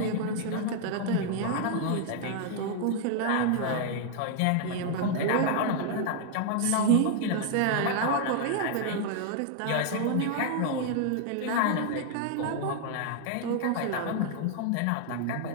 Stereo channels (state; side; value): different; both; correlation -0.01